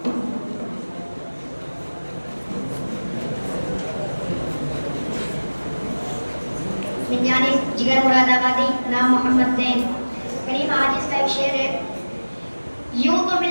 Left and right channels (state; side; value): inverted; both; correlation -1.00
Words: من جانب جگر مراد آبادی، نام محمد زین۔ کریم عاجز کا ایک شعر ہے، یوں تو